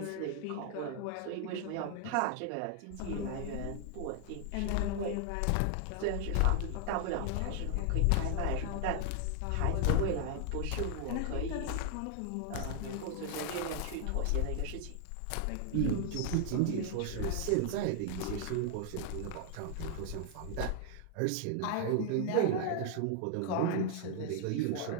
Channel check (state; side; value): different; both; correlation 0.00